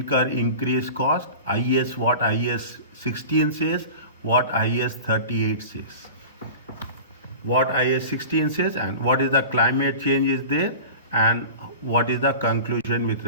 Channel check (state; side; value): inverted; both; correlation -0.35